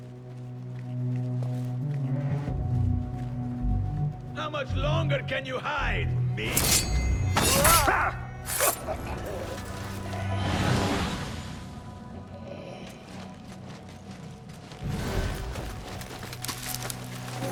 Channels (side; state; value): both; identical; correlation 1.00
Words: How much longer can you hide, me?